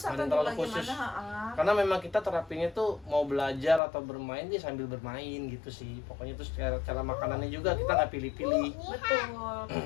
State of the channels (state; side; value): drops out; right; at 3.8 s